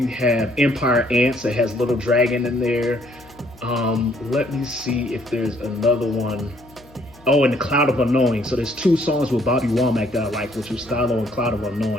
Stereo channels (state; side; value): noise; left; hum, 25 dB below the sound